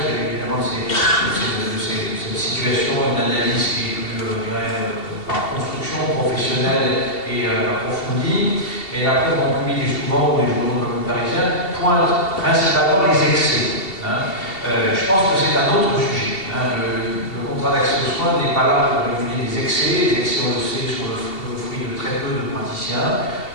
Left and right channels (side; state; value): right; late; 2.7 ms